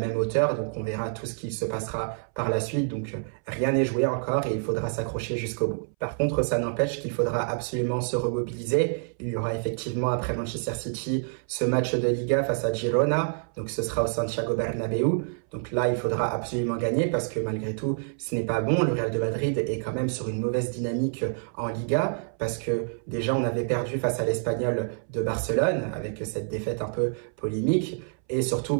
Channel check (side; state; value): left; silent; 60 dB below the other